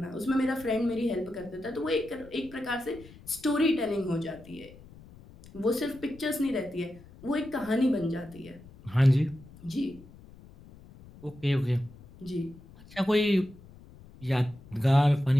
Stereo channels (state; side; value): noise; left; rumble, 21 dB below the sound